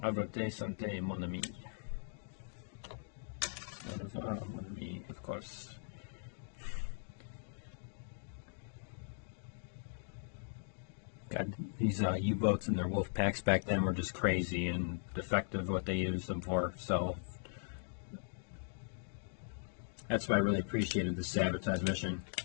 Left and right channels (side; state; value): right; silent; digital silence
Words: Avrate Sante, mon ami. Mon ami, of course. God, these U-boats and their wolf packs back then were just crazy and defective what they used them for, so that's why I really appreciated the sabotage mission.